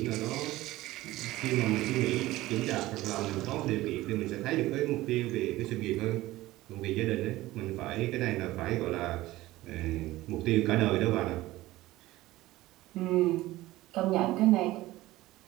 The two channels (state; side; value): quieter; left; 17.4 dB